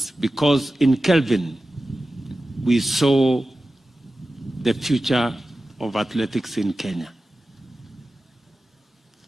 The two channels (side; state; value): both; normal; correlation 0.94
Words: because in Kelvin we saw the future of athletics in Kenya.